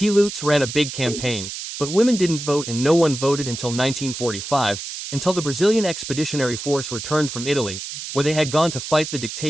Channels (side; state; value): right; noise; hiss, 8 dB below the sound